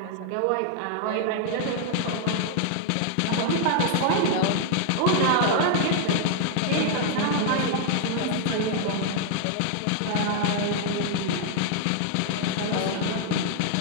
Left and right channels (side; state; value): both; different; correlation 0.00